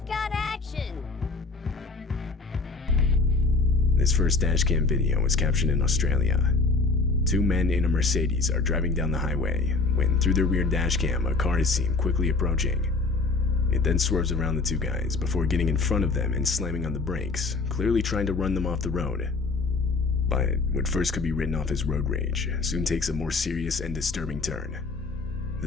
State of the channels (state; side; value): quieter; right; 3.8 dB